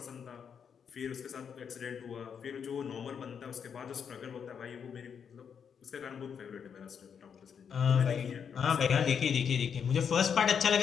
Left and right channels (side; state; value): right; quieter; 7.2 dB